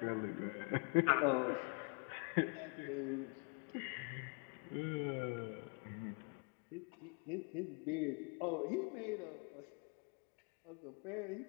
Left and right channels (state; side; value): quieter; right; 35.8 dB